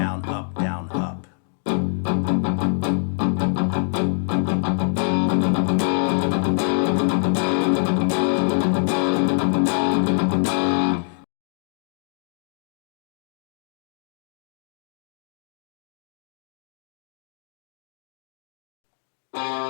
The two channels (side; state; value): right; silent; digital silence